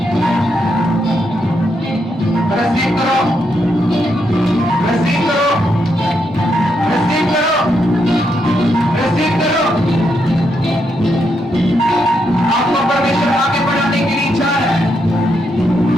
रिसीव करो, रिसीव करो, रिसीव करो, रिसीव करो। आपको परमेश्वर आगे बढ़ाने के लिए इच्छा है,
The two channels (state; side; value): normal; both; correlation 0.80